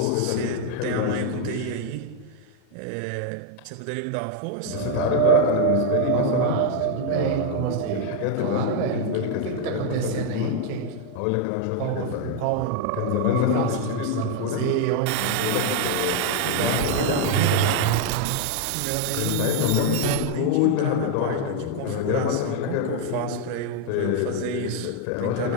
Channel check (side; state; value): both; different; correlation 0.01